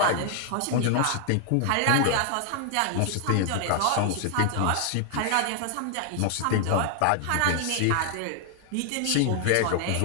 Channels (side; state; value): both; different; correlation 0.00